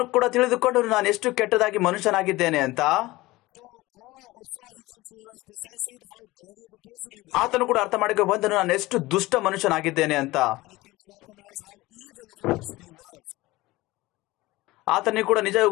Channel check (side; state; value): right; quieter; 19.5 dB